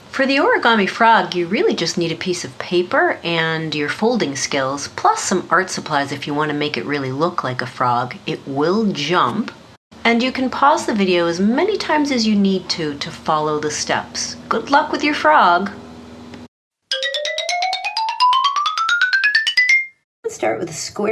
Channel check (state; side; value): identical; both; correlation 1.00